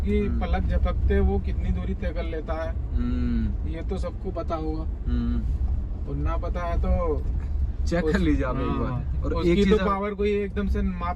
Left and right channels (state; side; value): identical; both; correlation 1.00